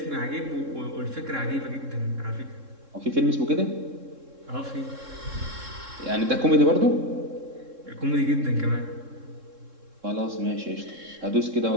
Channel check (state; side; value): late; left; 3.7 ms